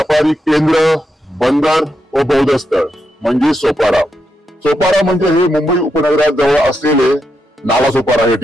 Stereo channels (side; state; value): both; normal; correlation 0.83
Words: केंद्र, बंदर व बौद्ध स्थळ म्हणजे सोपारा. सोपारा म्हणजे हे मुंबई उपनगरात जवळ असलेले नालासोपारा हे